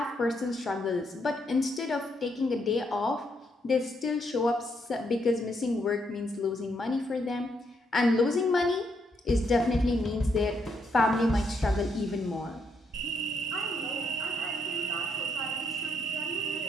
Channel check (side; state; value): both; normal; correlation 0.76